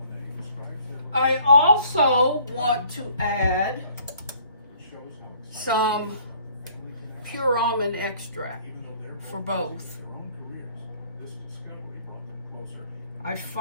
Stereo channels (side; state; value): both; inverted; correlation -0.58